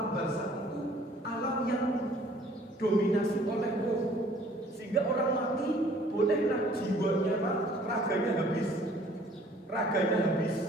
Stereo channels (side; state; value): both; normal; correlation 0.56